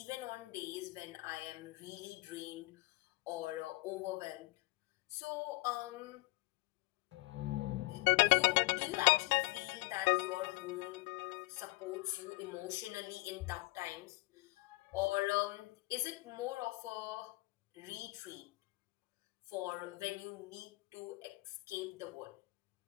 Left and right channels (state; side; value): quieter; right; 23.0 dB